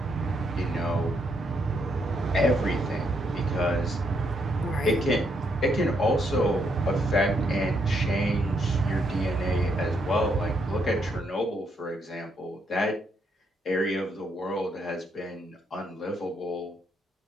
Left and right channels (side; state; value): both; normal; correlation 0.75